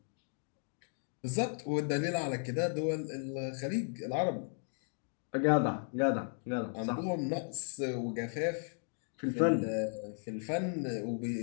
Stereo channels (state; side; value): silent; right; 54 dB below the other